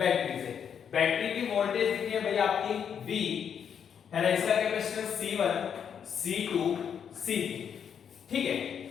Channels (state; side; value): quieter; right; 7.8 dB